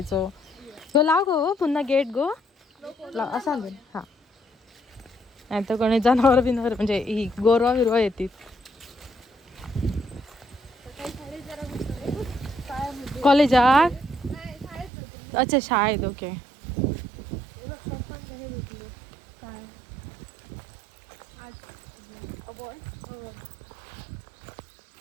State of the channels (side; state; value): left; drops out; at 14.9 s